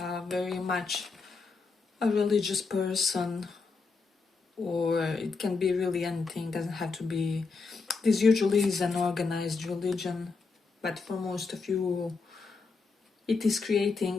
very much a religious person, or it can be really anything, doesn't have to be. This usually is an organized religion, but for most of you it is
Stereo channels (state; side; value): quieter; right; 4.4 dB